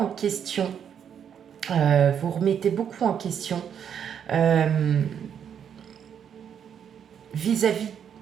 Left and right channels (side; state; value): left; quieter; 8.3 dB